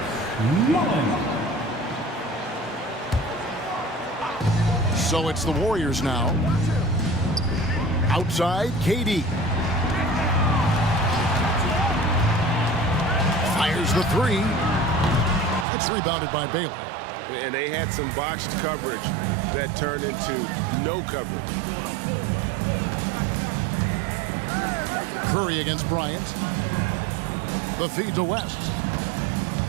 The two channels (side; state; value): left; drops out; at 15.7 s